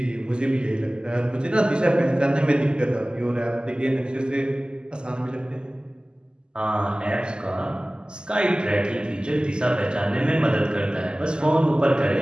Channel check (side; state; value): left; late; 0.047 ms